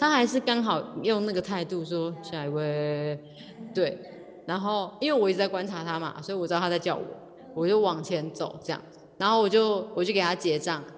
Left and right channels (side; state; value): both; identical; correlation 1.00